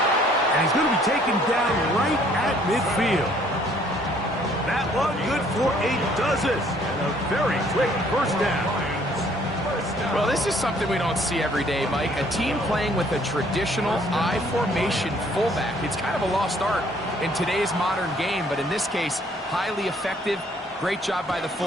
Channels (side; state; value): both; normal; correlation 0.61